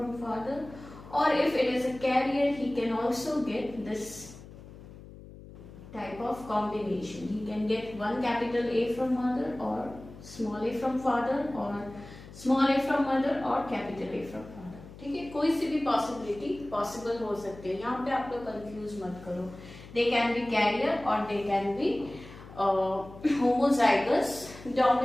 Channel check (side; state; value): left; noise; hum, 17 dB below the sound